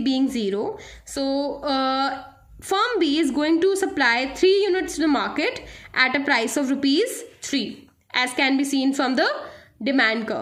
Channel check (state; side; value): identical; both; correlation 1.00